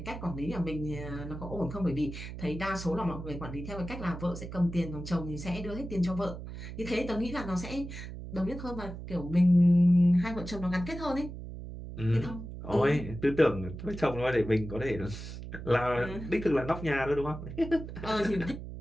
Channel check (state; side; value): noise; right; hum, 10 dB below the sound